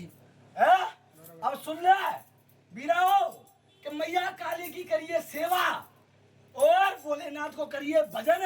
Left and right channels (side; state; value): both; identical; correlation 1.00